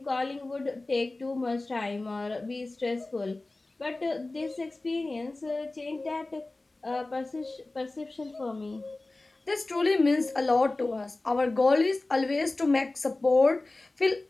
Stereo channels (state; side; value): quieter; right; 3.0 dB